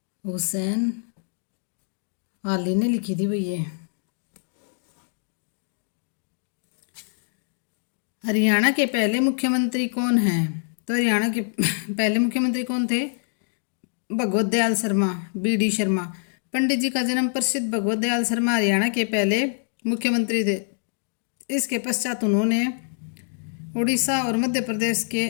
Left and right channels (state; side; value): silent; right; digital silence